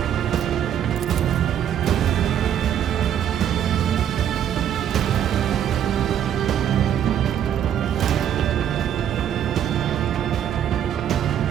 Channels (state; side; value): quieter; left; 9.8 dB